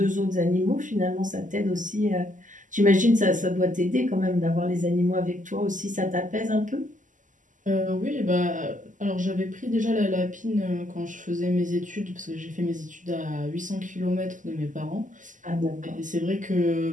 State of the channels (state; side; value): late; left; 0.37 ms